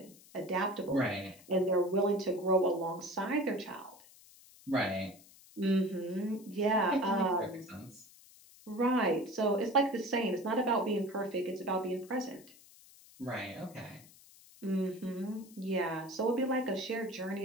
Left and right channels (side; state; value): left; noise; hiss, 23 dB below the sound